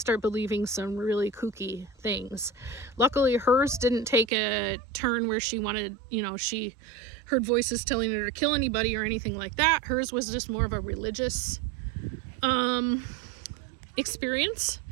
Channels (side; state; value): left; drops out; at 4.3 s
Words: believing some really kooky things. Luckily, hers didn't take a turn where she wanted, she heard voices telling her to kill anybody or anything like that. Hers was just more of a religious experience.